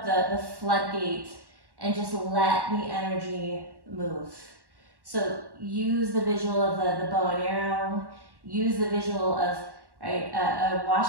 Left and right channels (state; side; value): late; left; 1.1 ms